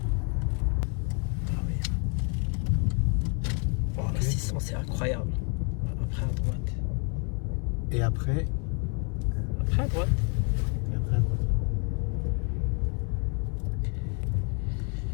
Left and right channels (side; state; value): right; quieter; 36.5 dB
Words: Ah oui. Oh, la 600 c'est incroyable. Après à droite. Et après? Après à droite. Et après à droite.